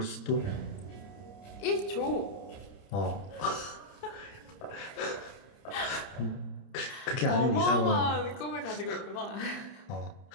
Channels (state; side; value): late; right; 30 ms